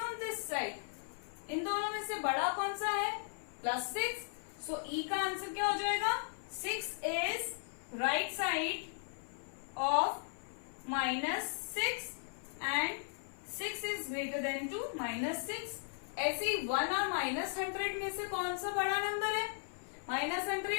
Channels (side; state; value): right; silent; 53 dB below the other